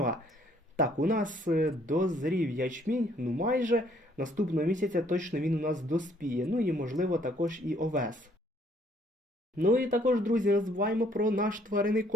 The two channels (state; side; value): normal; both; correlation 0.64